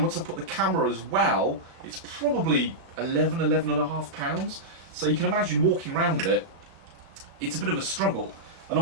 I put the camera as well, it's probably 11 and a half pounds. So you can imagine walking around with it, it's a bit of a struggle. And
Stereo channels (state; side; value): late; left; 35 ms